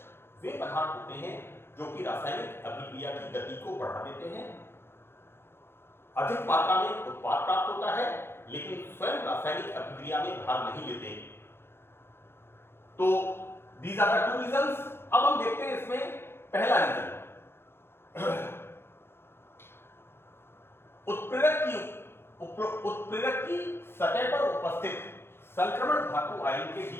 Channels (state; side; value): late; right; 0.11 ms